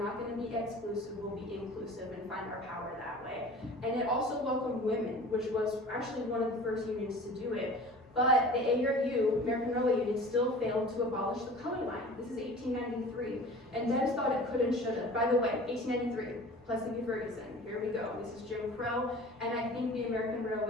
not going to be exclusive, we'll be inclusive and find our power that way. And it also welcomed women, which was actually one of the first unions to do it. But the ARU, American Railway Union, still failed to abolish the color line. This is 1893, and Debs thought it could and should have. By the way, 1893, Plessy v. Ferguson, here we go. This is Jim Crow, and I think the American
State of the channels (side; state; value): both; normal; correlation 0.41